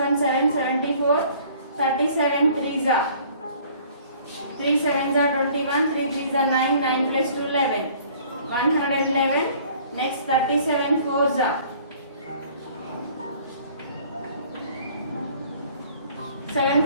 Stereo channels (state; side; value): inverted; both; correlation -0.54